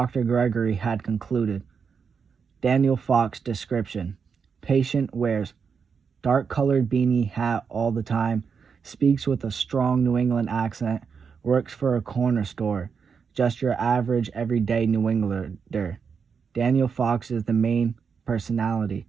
Gregory had concluded. Daniel Fox description. Patient wears dark-colored beanie hat all the time, speaks with a strong New England accent, works for a corner store, just your average everyday New Englander. Daniel Fox is the main personality.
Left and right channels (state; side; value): quieter; left; 6.1 dB